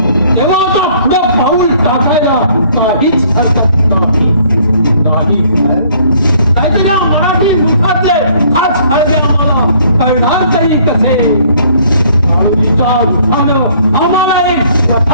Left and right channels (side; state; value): both; inverted; correlation -0.60